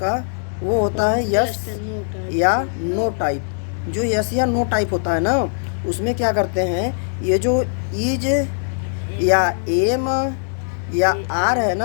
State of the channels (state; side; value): silent; right; digital silence